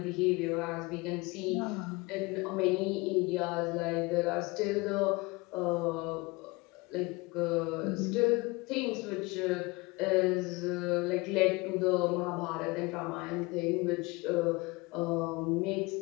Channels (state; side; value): quieter; right; 24.6 dB